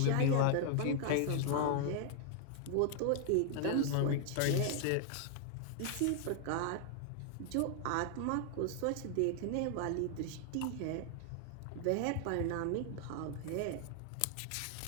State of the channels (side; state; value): both; different; correlation 0.00